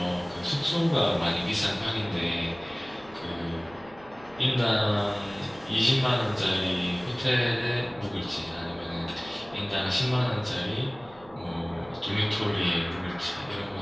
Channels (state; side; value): noise; right; hum, 24 dB below the sound